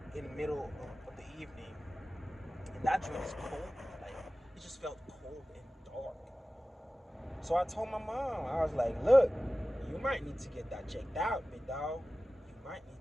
middle of the evening, and that joint is cold. Like it just felt cold and dark. So I told my mom, I was like, look, you might need to get that checked out, big dog. You might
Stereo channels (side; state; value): both; normal; correlation 0.96